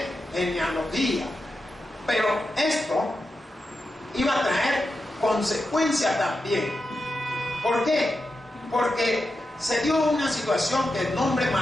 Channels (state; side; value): normal; both; correlation 0.89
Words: genealogía. Pero esto iba a traer consecuencia también. ¿Por qué? Porque se dio una situación que el nombre